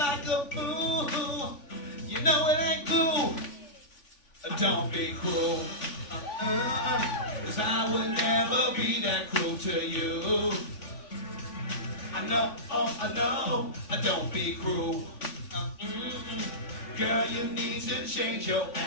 a fool. You know it ain't cool. Don't be cruel. 'cause I would never be that cruel to you. I know, don't be cruel. Girl, you need to change your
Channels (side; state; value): right; late; 3.5 ms